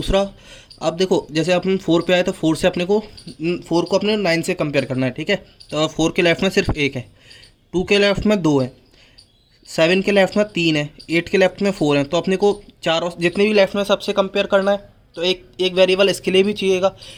अब देखो जैसे अपन 4 पे आए तो 4 से अपने को 4 को अपने 9 से कंपेयर करना है, ठीक है। तो 4 के लेफ्ट में सिर्फ 1 है, 2 के लेफ्ट में 2 है, 7 के लेफ्ट में 3 है, 8 के लेफ्ट में 4 है। तो अपने को चारों जितने भी लेफ्ट में सबसे कंपेयर करना है। तो एक वेरिएबल इसके लिए भी चाहिएगा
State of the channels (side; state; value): both; identical; correlation 1.00